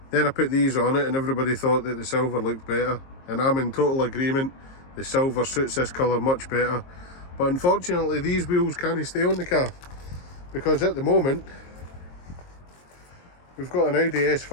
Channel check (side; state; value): right; late; 22 ms